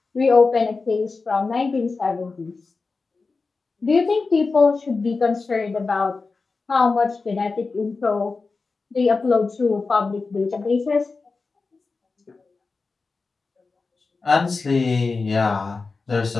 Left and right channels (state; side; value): quieter; right; 4.1 dB